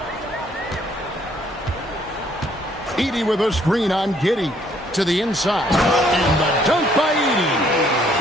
Edey with a screen on Giddey to the inside. And the dunk by Edey.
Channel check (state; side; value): normal; both; correlation 0.65